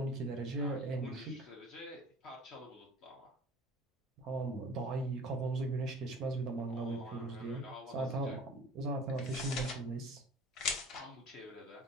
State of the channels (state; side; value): normal; both; correlation 0.46